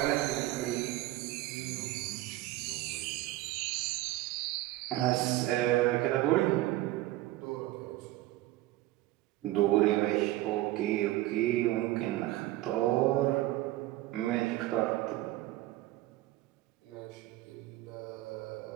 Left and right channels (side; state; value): left; quieter; 16.7 dB